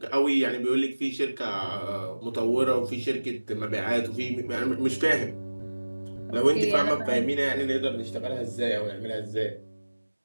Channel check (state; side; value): inverted; both; correlation -1.00